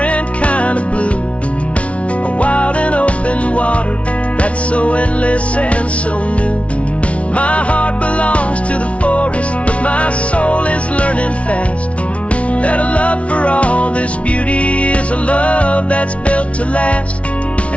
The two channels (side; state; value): right; late; 0.063 ms